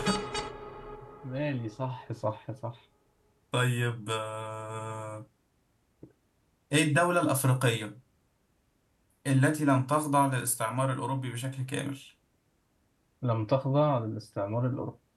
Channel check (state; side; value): identical; both; correlation 1.00